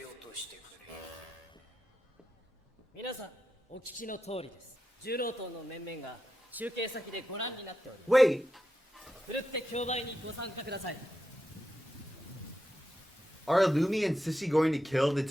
落としてくれ。皆さんお聞きの通りです。重労党の面々が中継先でご覧になっております。 Wait, ふるって競売にご参加ください。 are Illumi and Sissy going to kill the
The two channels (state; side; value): normal; both; correlation 0.87